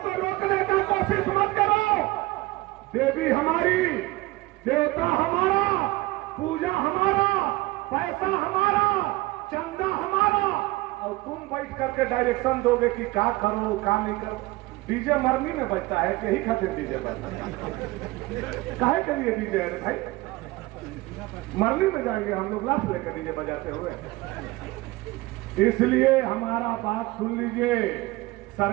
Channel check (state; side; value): quieter; left; 20.2 dB